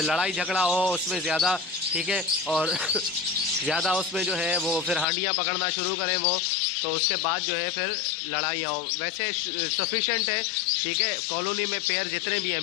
लड़ाई झगड़ा हो उसमें ज़्यादा, ठीक है। और ज़्यादा उसमें जो है वो फिर हांडियाँ पकड़ना शुरू करें वो, तो उसके बाद जो है फिर लड़ाइयाँ हो। वैसे सफिशेंट है, ठीक है, कॉलोनी में पेयर जितने भी हैं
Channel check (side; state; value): right; drops out; at 5.1 s